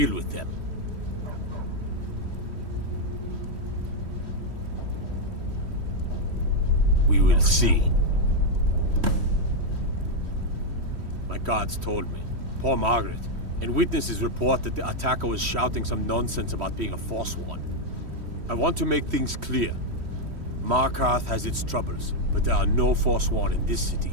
with them. We will see. My guards told me. Poor Margaret. And witnesses report that the attacker was shouting some nonsense about being a Forsworn. I want to make things clear. Markarth has its troubles, but there are no Forsworn in this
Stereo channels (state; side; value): late; left; 3.1 ms